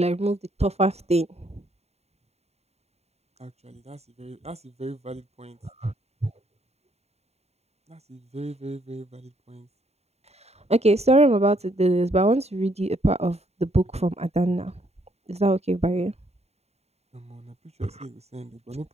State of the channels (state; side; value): late; left; 0.31 ms